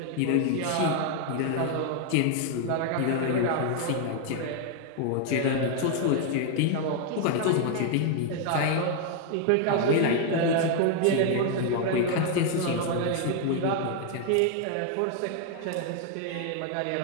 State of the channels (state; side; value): different; both; correlation 0.00